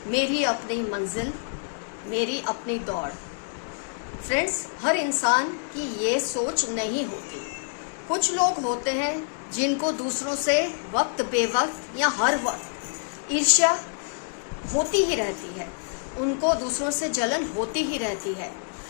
मेरी अपनी मंजिल, मेरी अपनी दौड़। फ्रेंड्स, हर इंसान की ये सोच नहीं होती। कुछ लोग होते हैं जिनको दूसरों से वक्त बेवक्त या हर वक्त ईर्ष्या होती ही रहती है, उनको दूसरों से जलन होती ही रहती है।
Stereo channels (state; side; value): silent; right; digital silence